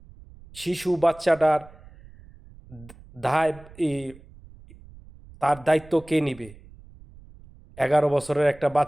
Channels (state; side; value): noise; right; rumble, 22 dB below the sound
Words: শিশু বাচ্চাটার দায়, তার দায়িত্ব কে নিবে? 11 বছরের একটা